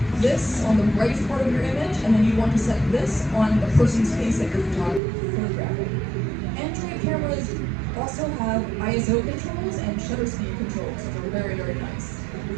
this on the brightest part of your image, and then you want to set this on the person's face that you're photographing. Android cameras also have ISO controls and shutter speed controls, which are very, very nice,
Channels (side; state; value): left; drops out; at 5.0 s